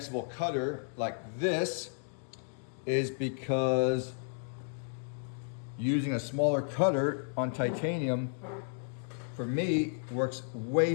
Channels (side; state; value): right; silent; digital silence